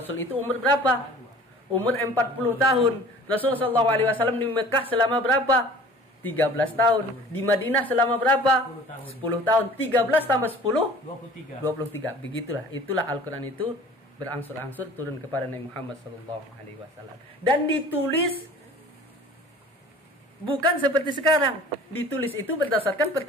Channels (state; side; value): normal; both; correlation 0.46